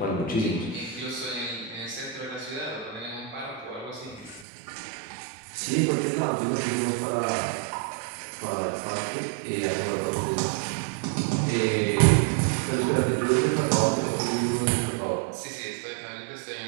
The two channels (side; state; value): left; drops out; at 4.5 s